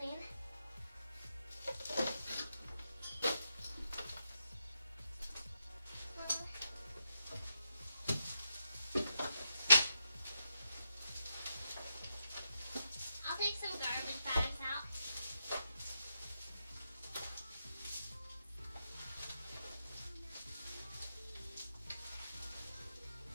I'll take some garbage bags out.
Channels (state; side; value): inverted; both; correlation -0.84